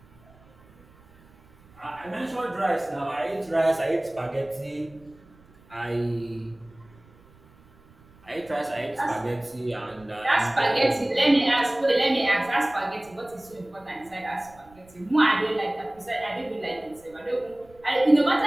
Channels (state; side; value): noise; right; rumble, 27 dB below the sound